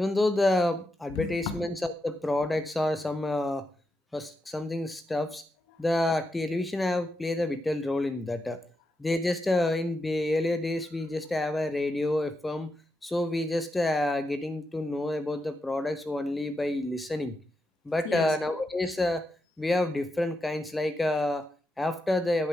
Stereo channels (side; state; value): both; normal; correlation 0.85